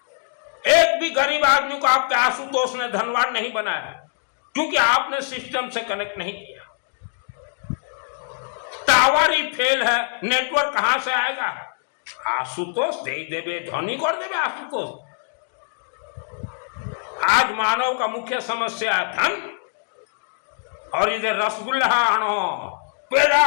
एक भी गरीब आदमी को आपके आशुतोष ने धनवान नहीं बनाया, क्योंकि आपने सिस्टम से कनेक्ट नहीं किया। टावर ही फेल है, नेटवर्क कहां से आएगा? आशुतोष दे देवे, धनी कर देवे आशुतोष। आज मानव का मुख्य समस्या है धन, और इधर रसगुल्ला आनो, पेड़ा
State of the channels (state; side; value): silent; right; digital silence